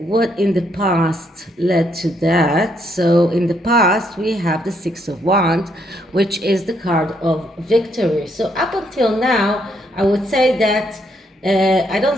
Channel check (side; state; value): both; normal; correlation 0.73